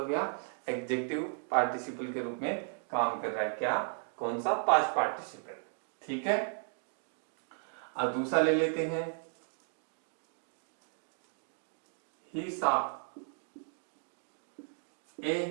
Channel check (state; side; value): silent; left; 54 dB below the other